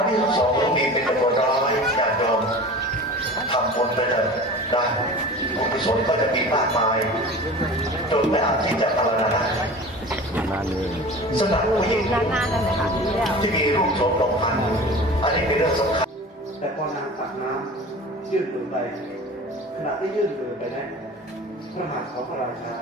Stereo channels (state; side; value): normal; both; correlation 0.38